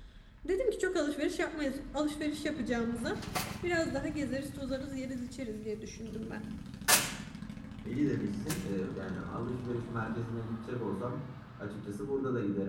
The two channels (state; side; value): identical; both; correlation 1.00